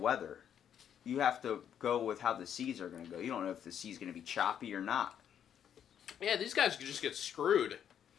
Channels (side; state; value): right; quieter; 9.1 dB